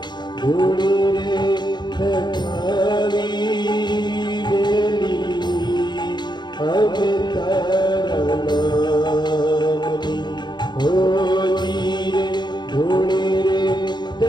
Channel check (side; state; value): right; late; 0.21 ms